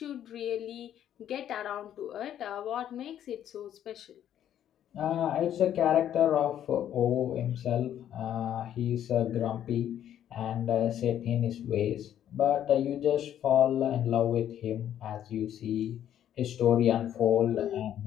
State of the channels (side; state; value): right; quieter; 10.6 dB